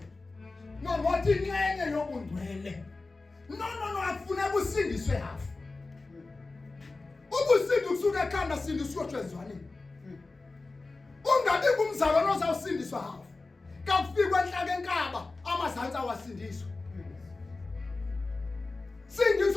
Wathi inxenye yobungcwele. No afuna kusindiswe hafu. Ubusindi kusuka ekhanda sindiswe tshezwaneni. Ungabi kumzalwane ozawusindiswa hafu. Kakufika enhlaka enkaba amazantsi awasindiswa.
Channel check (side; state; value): right; quieter; 3.5 dB